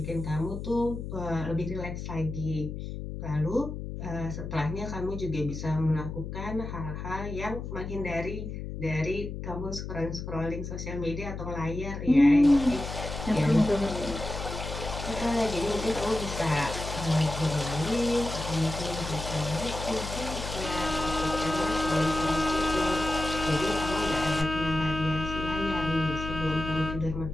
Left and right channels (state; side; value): noise; left; hum, 7 dB below the sound